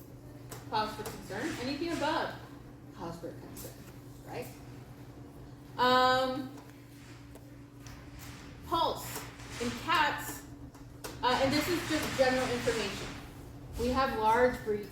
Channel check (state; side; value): identical; both; correlation 1.00